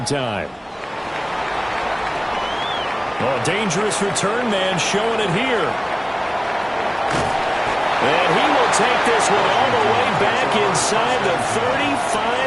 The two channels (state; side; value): identical; both; correlation 1.00